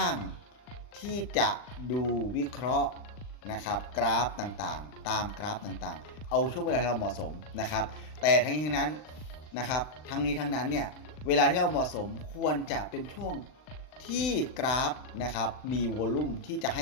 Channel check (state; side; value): late; right; 39 ms